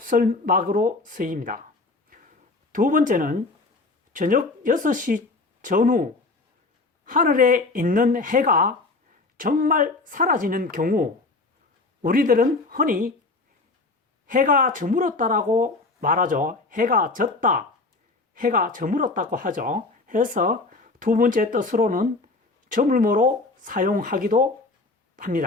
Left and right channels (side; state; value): right; quieter; 3.5 dB